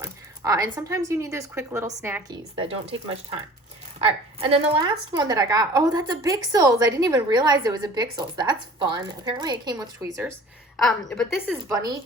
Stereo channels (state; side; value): normal; both; correlation 0.46